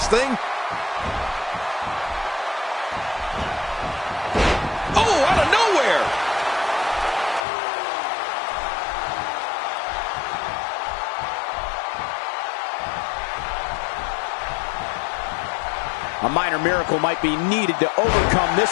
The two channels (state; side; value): drops out; right; at 7.4 s